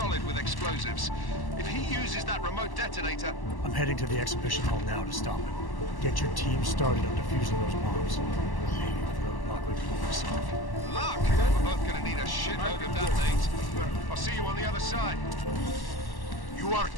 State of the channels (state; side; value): late; right; 1.1 ms